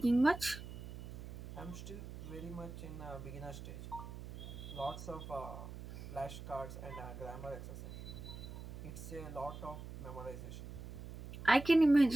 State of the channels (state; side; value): noise; right; hum, 10 dB below the sound